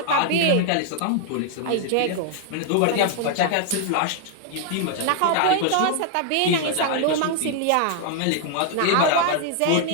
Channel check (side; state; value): both; different; correlation 0.00